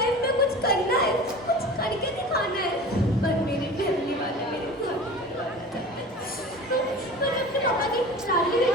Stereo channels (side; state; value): both; normal; correlation 0.37